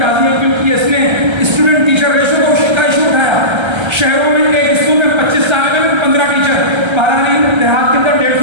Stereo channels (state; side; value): late; left; 1.3 ms